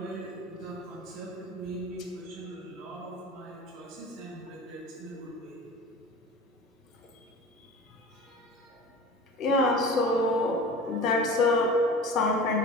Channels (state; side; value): normal; both; correlation 0.37